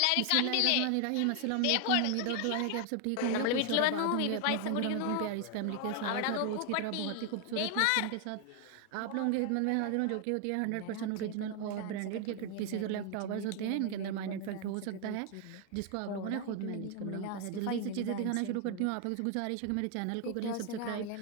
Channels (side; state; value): both; different; correlation 0.00